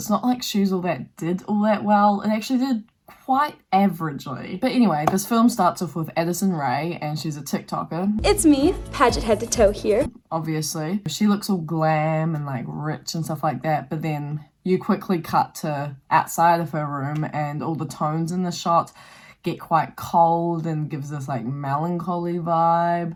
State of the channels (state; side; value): identical; both; correlation 1.00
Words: not like She's All That did all that well. It actually did quite averagely. But anyway, this film starts off with Addison Rae, and she's a TikToker. It's me, Paget head to toe here. Obviously. She looks all glam and like rich and stuff like that, but then you quickly cut to outside of her room and all the tones in the shot get quite cold and gives this like melancholy